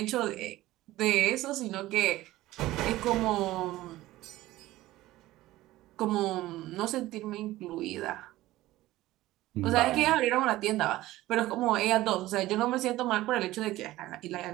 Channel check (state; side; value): quieter; left; 16.7 dB